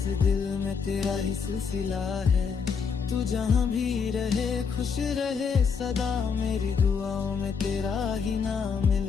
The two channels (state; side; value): quieter; right; 5.9 dB